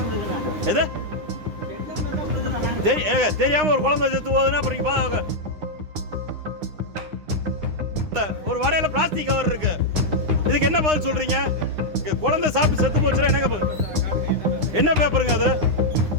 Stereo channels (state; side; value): late; left; 9.8 ms